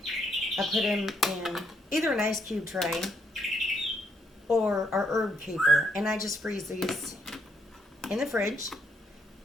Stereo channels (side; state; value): both; normal; correlation 0.73